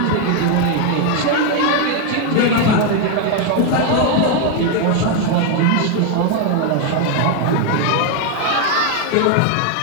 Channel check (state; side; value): different; both; correlation 0.01